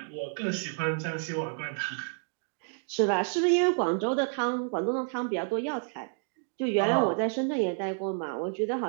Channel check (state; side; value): silent; left; 58 dB below the other